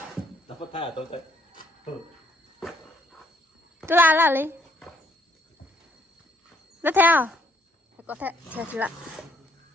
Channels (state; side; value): normal; both; correlation 0.69